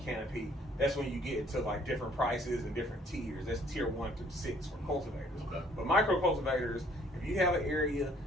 that's when you get into like different prices and different tiers. That's tier 1 through 6 for cultivators. Okay. But micro cultivators, if you have an area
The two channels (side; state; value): both; normal; correlation 0.60